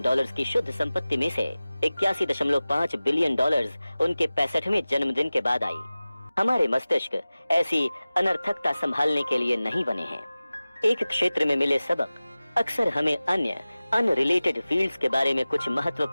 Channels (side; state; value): both; inverted; correlation -0.97